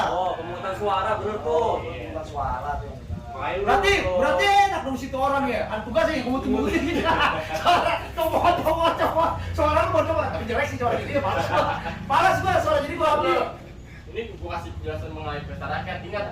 Oh, pemungutan suara bener tuh. Bukan suara tuh. Makanya lu Berarti nyoblos. berarti enak dong situ orang ya. Kan tugas ya gumut-gumutin gitu. Coba. Suara lu mau coba. Tapi jelek sih suara gitu ya malas. Malas gua suara jadi gua ambil. Ini gua kasih penjelasan mengenai pesta rakyat. Ingat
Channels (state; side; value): identical; both; correlation 1.00